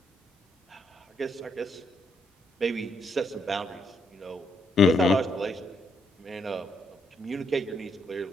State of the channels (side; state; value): both; normal; correlation 0.74